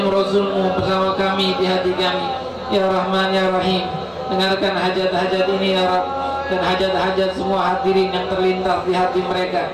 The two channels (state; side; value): identical; both; correlation 1.00